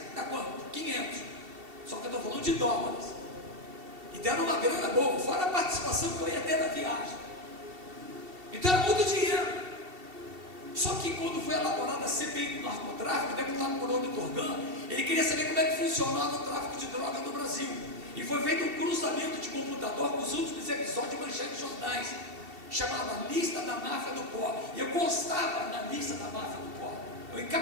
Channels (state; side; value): late; left; 2.7 ms